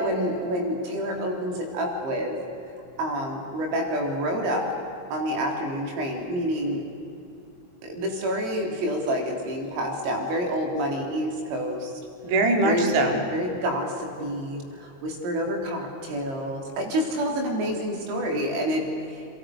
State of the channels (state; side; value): late; left; 22 ms